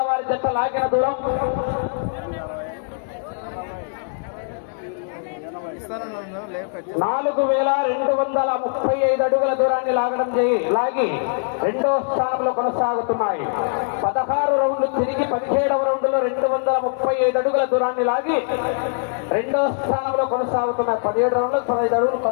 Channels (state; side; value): silent; right; digital silence